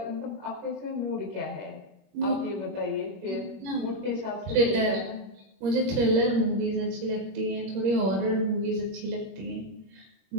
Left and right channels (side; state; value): left; late; 21 ms